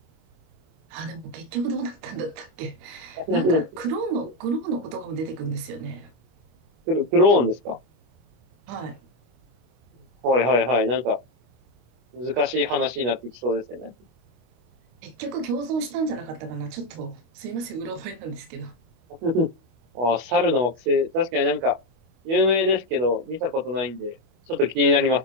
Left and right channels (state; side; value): late; left; 25 ms